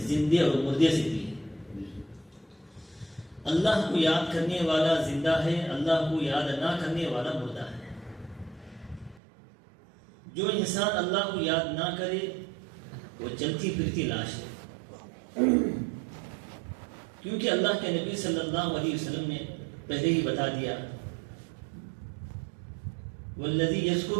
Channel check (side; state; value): left; drops out; at 9.2 s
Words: زندے اور مردے سے دی. اللہ کو یاد کرنے والا زندہ ہے، اللہ کو یاد نہ کرنے والا مردہ ہے. جو انسان اللہ کو یاد نہ کرے وہ چلتی پھرتی لاش ہے، کیونکہ اللہ کے نبی صلی اللہ علیہ وسلم نے پہلے ہی بتا دیا والذی